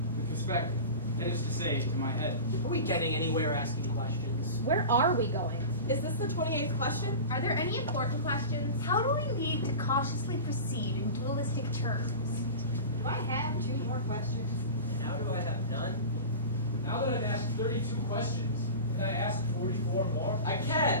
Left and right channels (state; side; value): inverted; both; correlation -0.31